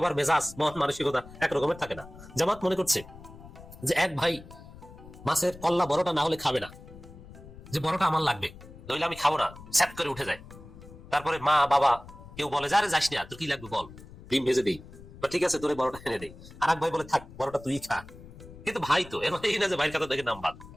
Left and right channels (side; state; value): left; noise; rumble, 18 dB below the sound